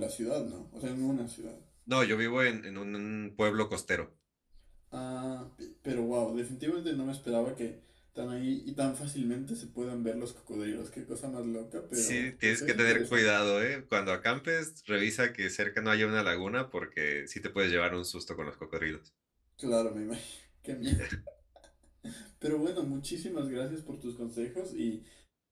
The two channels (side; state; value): both; identical; correlation 1.00